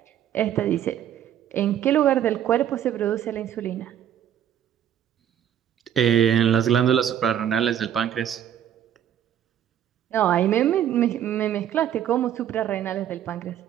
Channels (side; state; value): left; quieter; 10.3 dB